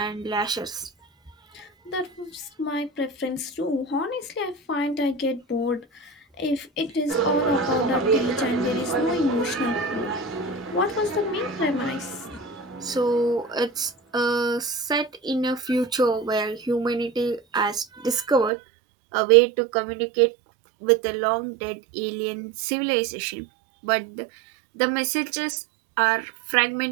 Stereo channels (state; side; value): drops out; left; at 18.5 s